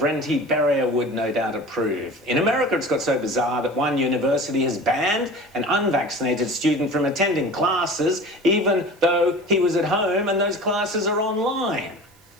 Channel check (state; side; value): noise; right; hiss, 30 dB below the sound